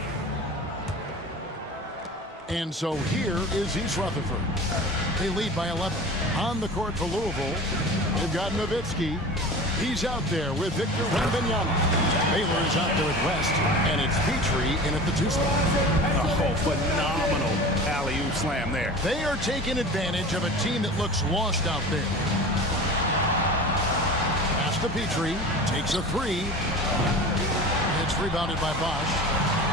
And so here is East Rutherford. They lead by 11. On the court for Louisville, they've got Nowitzki. He's out there with Victor Wembanyama. Baylor is out there with West, and it's Petrie in at the 2 spot. Oh, phenomenal alley-oop slam there. They are taking advantage of a team that looks lost out there. Pass to Petrie, takes a 3. It's rebounded by Bosch.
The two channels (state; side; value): normal; both; correlation 0.36